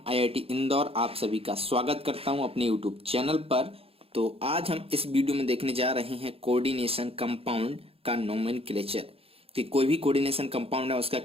IIT Indore आप सभी का स्वागत करता हूं अपने यूट्यूब चैनल पर। तो आज हम इस वीडियो में देखने जा रहे हैं कोऑर्डिनेशन कंपाउंड का नोमेनक्लेचर कि कोई भी कोऑर्डिनेशन कंपाउंड है उसका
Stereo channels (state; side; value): late; left; 0.28 ms